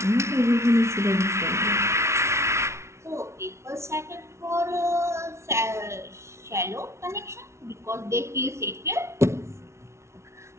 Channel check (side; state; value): left; late; 0.13 ms